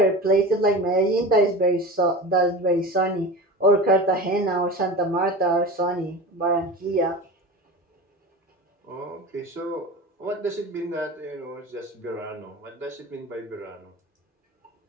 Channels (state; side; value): normal; both; correlation 0.31